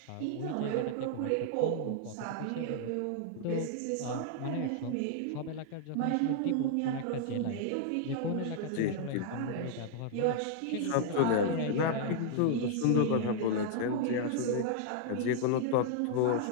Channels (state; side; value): different; both; correlation -0.01